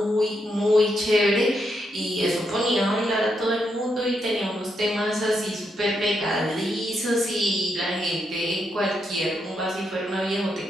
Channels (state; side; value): normal; both; correlation 0.80